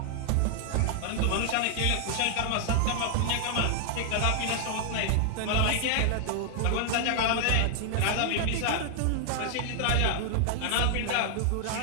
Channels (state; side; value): different; both; correlation -0.01